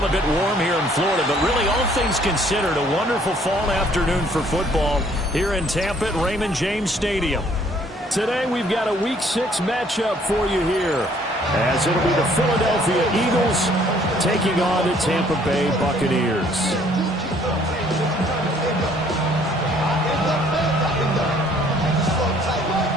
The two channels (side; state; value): both; normal; correlation 0.61